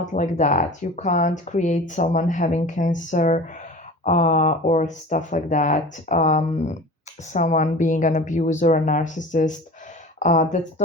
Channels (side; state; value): both; normal; correlation 0.37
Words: like that. You can't create someone having cancer or stuff like that. Someone being an abuser, a narcissist. That's